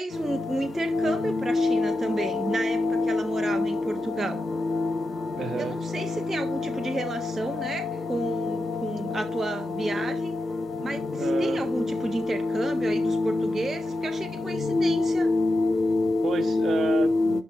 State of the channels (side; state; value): both; normal; correlation 0.89